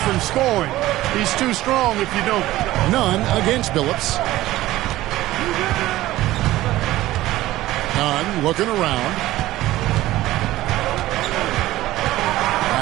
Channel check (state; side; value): quieter; left; 16.1 dB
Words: scoring. He's too strong if you don't. Nunn against Billups. Nunn looking around.